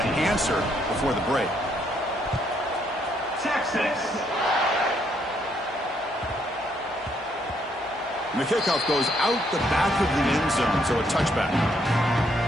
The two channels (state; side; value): normal; both; correlation 0.72